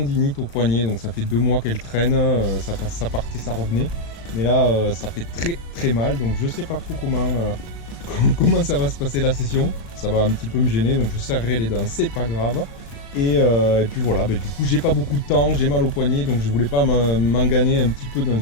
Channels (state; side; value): late; right; 36 ms